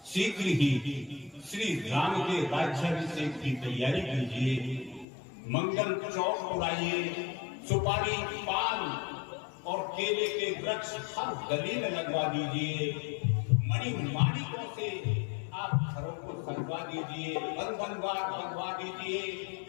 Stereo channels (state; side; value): drops out; right; at 5.1 s